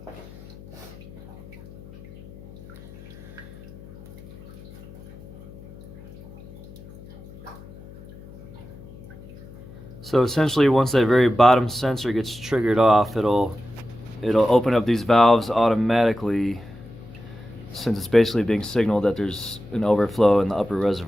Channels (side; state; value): left; noise; hum, 18 dB below the sound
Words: essentially, once that very bottom sensor gets triggered off, it'll open up these valves automatically, since it's basically being signaled that there's an overflow in the upper